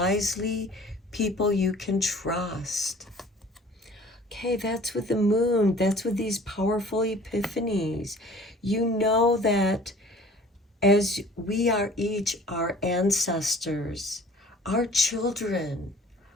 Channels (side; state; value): both; normal; correlation 0.49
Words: people you can trust. Okay, that's with the moon. That's with these powerful epiphanies. You know that as we are each our ancestors, our children